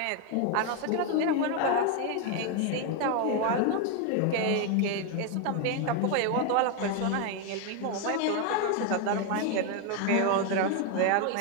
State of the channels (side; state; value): both; different; correlation 0.01